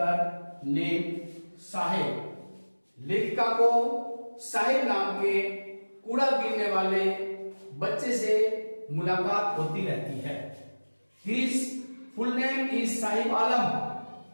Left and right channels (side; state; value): both; inverted; correlation -1.00